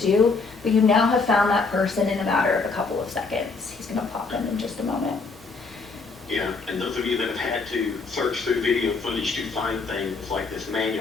but you now have found that person in a matter of a couple of seconds. He's going to pop in just a moment. Yeah, and those of you that have had to search through video footage to find things like this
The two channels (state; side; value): quieter; right; 4.3 dB